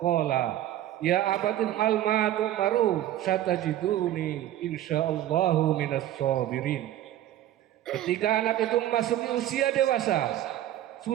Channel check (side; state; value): left; quieter; 12.9 dB